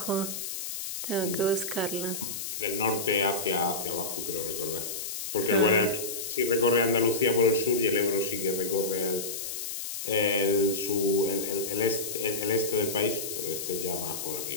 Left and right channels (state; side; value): noise; left; hiss, 6 dB below the sound